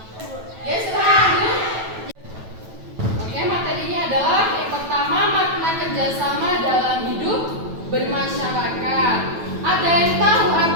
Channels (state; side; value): late; left; 9.1 ms